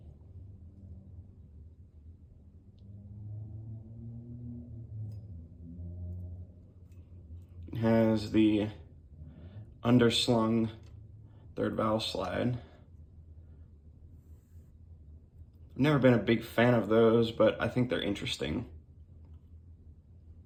It has the underslung third valve slide. I've never been a big fan of those, but I think they're interesting.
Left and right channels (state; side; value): identical; both; correlation 1.00